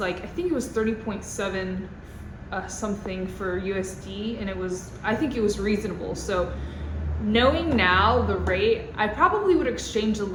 like, I think it was 30.7 something for USD, and I think it was reasonable. So knowing now the rate, I probably would exchange a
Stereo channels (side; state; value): both; identical; correlation 1.00